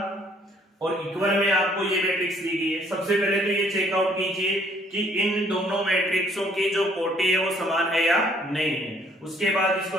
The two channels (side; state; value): both; normal; correlation 0.62